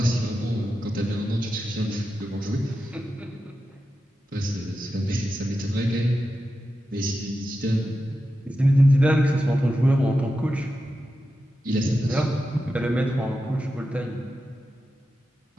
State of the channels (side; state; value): both; normal; correlation 0.90